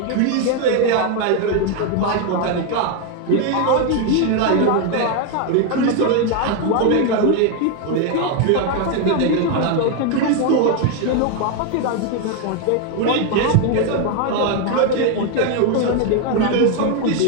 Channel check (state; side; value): different; both; correlation 0.01